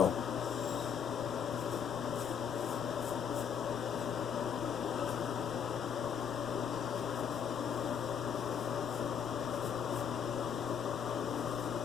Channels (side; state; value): right; quieter; 7.3 dB